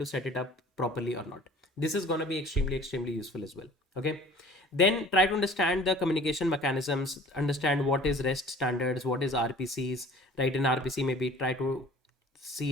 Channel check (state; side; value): normal; both; correlation 0.47